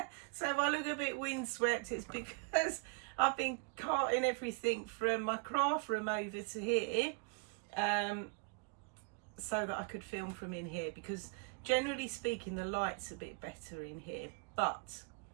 So if I look a bit windswept, it's because I've been carting everything from my craft room over to here, so that I could film from in here, because generally speaking the light's a bit better in here, but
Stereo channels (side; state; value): left; quieter; 35.8 dB